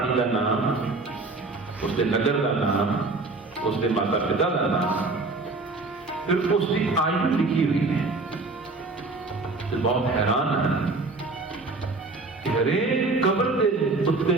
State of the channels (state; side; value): quieter; left; 3.5 dB